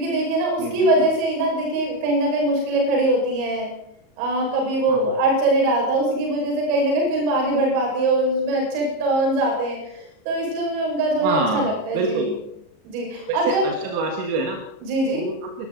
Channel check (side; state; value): left; late; 37 ms